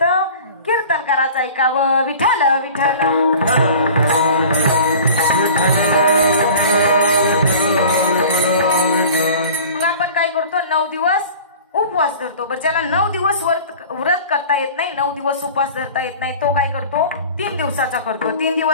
कीर्तनकाराचं ऐकावं. विठ्ठल विठ्ठल. मग आपण काय करतो? 9 दिवस उपवास धरतो. बरं, ज्याला 9 दिवस व्रत करता येत नाही, 9 दिवस उपवास धरता येत नाही, तो काय करतो? 3 दिवसाचा करतो. 3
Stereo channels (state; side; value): inverted; both; correlation -0.42